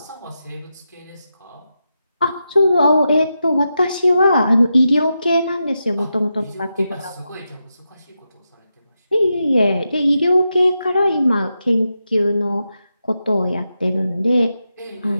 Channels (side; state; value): both; inverted; correlation -0.87